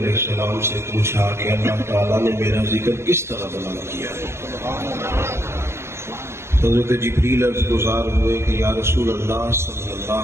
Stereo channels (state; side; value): late; left; 0.13 ms